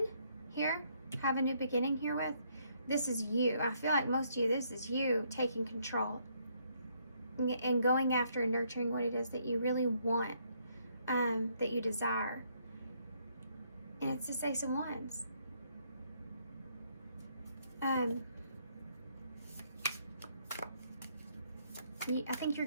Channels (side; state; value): both; inverted; correlation -0.71